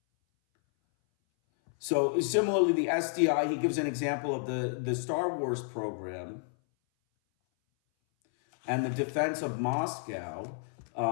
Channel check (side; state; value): right; silent; 57 dB below the other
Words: So similarly, the SDI, he gives an example of the Star Wars program and the defense of Moscow.